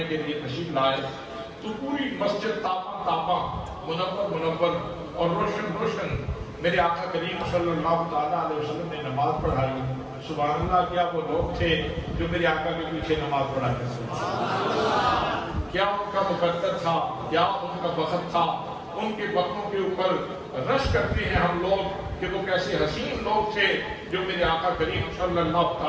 کے لیے تشریف لائے تو پوری مسجد تاپا تاپا، منور اور روشن میرے آقا کریم صلی اللہ تعالیٰ علیہ وسلم نے نماز پڑھائی۔ سبحان اللہ، کیا وہ لوگ تھے جو میرے آقا کے پیچھے نماز پڑھا کرتے تھے؟ کیا ان کا مقدر تھا، کیا ان کا وقت تھا؟ ان کے وقتوں کے اوپر رش کرتے ہیں ہم لوگ کہ وہ کیسے حسین لوگ تھے جو میرے آقا کریم صلی اللہ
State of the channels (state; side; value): identical; both; correlation 1.00